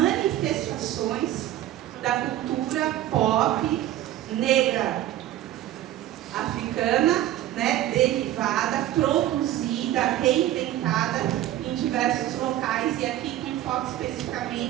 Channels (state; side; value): quieter; left; 13.4 dB